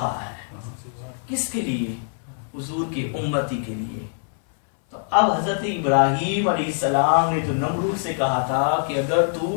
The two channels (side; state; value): right; silent; 58 dB below the other